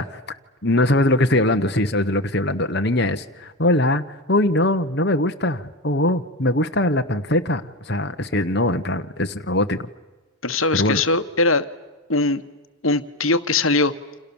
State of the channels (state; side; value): normal; both; correlation 0.19